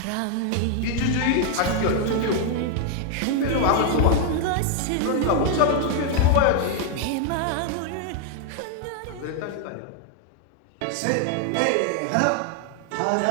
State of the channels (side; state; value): both; different; correlation 0.00